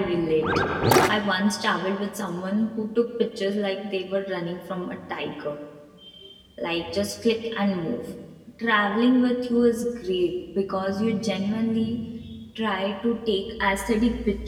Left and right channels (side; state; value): both; identical; correlation 1.00